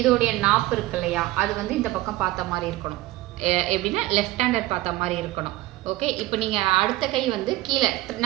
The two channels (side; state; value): left; quieter; 17.7 dB